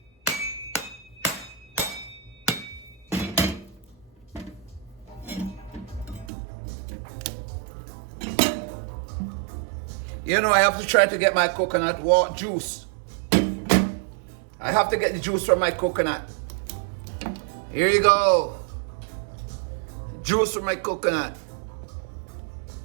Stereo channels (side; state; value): left; drops out; at 6.3 s